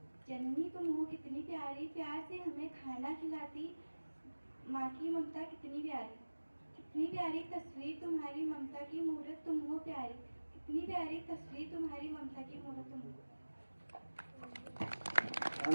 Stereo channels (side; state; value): both; inverted; correlation -1.00